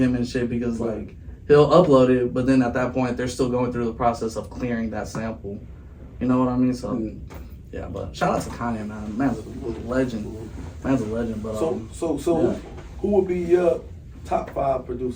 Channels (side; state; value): both; identical; correlation 1.00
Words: and shit because like he'll upload it, but then at that point they're still going through the process of clearing that sample. You know what I mean? So yeah, but shout out to Kanye, man. Man's a legend. Man's a legend. But So yeah. who would be your top 5